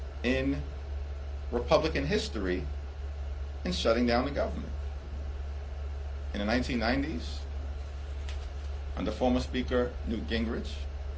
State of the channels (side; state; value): both; identical; correlation 1.00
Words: in Republican history in shutting down the government. In the 1990s, under former Speaker Newt Gingrich,